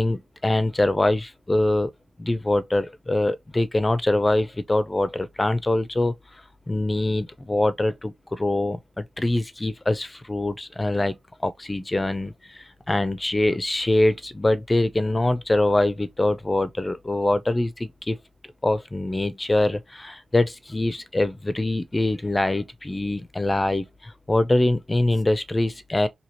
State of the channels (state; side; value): normal; both; correlation 0.98